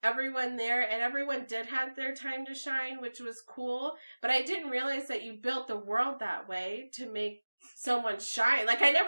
everyone there. And everyone did have their time to shine, which was cool. But I didn't realize that you built the world that way to make someone shine. Like, I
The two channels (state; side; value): inverted; both; correlation -1.00